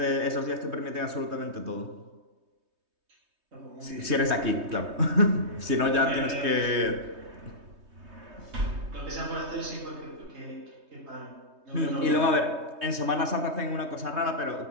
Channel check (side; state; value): left; late; 3.2 ms